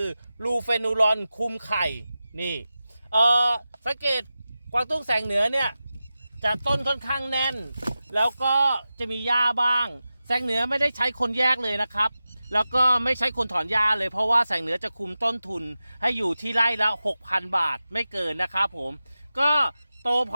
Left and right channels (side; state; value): both; inverted; correlation -0.94